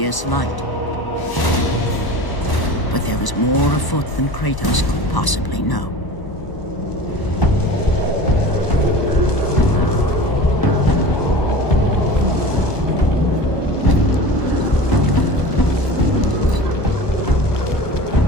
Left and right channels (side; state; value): right; late; 1.0 ms